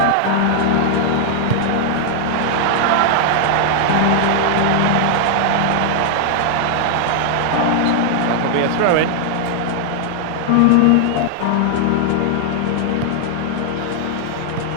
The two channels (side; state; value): both; different; correlation 0.00